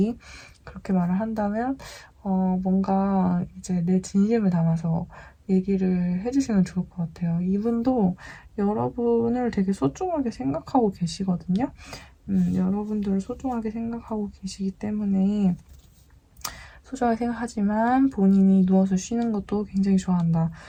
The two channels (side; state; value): both; identical; correlation 1.00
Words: 그렇게 말을 한다면, 뭔가 이제 내 진심을 담아서 얘기를 해주시면 좋을 것 같아요. 이분도 여러분을 되게 소중하게 생각하고 계시거든요. 여러분들을 소중하게 생각하고 계시기 때문에 소중하게 생각하지만 본인이 누워서 쉬는 것도 굉장히 좋아한다.